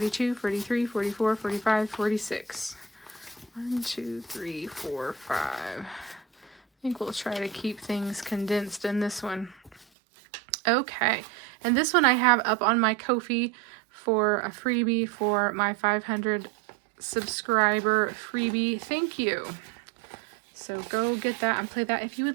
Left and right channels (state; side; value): drops out; left; at 9.9 s